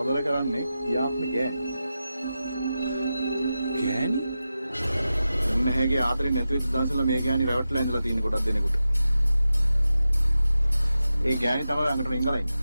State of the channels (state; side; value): inverted; both; correlation -0.92